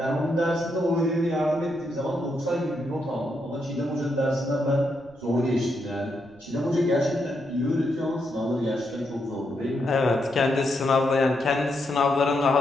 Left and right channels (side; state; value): right; noise; rumble, 27 dB below the sound